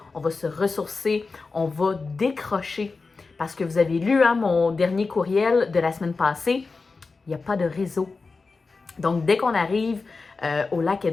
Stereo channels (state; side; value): quieter; right; 4.1 dB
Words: on va se ressourcer, on va décrocher. Parce que vous avez lu mon dernier courriel de la semaine passée, il n'y a pas de réseau. Donc, dès qu'on arrive au lac